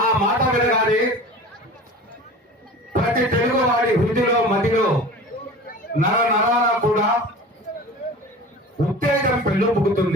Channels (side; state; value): both; normal; correlation 0.38